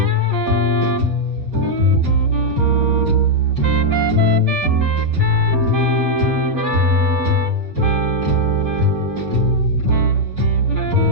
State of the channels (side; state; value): left; late; 4.3 ms